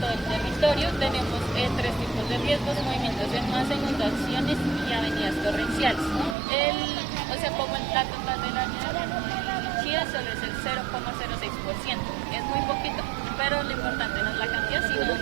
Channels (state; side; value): drops out; left; at 6.4 s